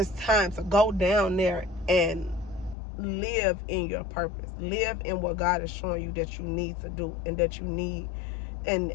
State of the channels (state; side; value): drops out; right; at 2.8 s